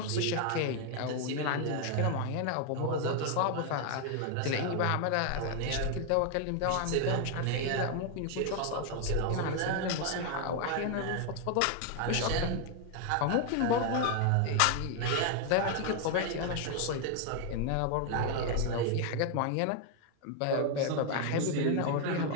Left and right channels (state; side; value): different; both; correlation 0.00